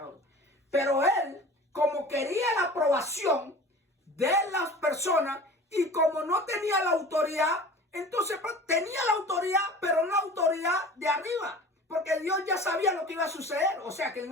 Pero él, como quería la aprobación de las personas y como no tenía la autoridad, entonces tenía la autoridad, pero no la autoridad de arriba. Porque Dios ya sabía lo que iba a suceder. O sea que en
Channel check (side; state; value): both; normal; correlation 0.40